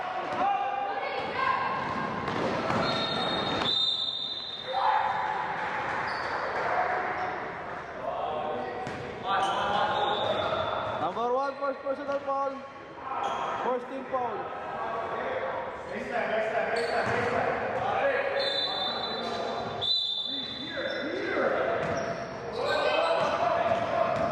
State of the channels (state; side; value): identical; both; correlation 1.00